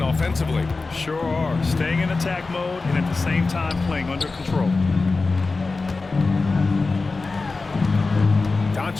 Sure are. Staying in attack mode and at the same time playing under control.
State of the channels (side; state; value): right; quieter; 3.8 dB